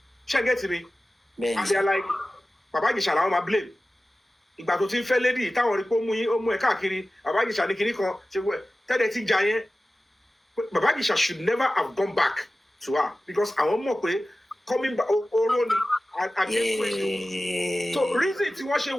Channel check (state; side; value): normal; both; correlation 0.96